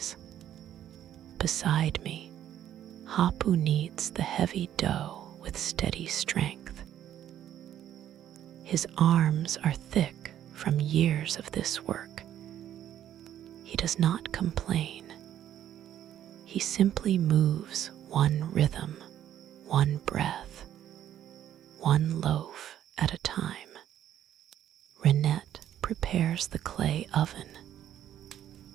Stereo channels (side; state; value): left; quieter; 11.1 dB